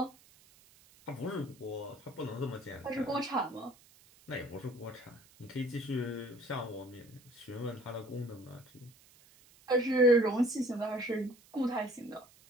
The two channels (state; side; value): noise; right; hiss, 26 dB below the sound